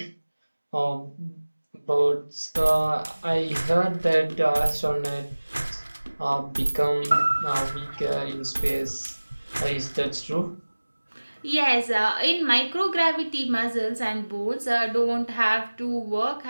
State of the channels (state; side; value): inverted; both; correlation -1.00